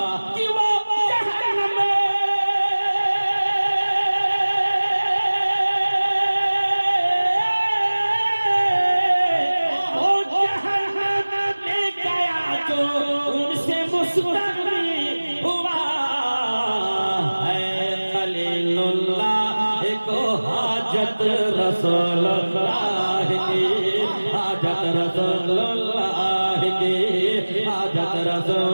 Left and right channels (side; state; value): both; inverted; correlation -1.00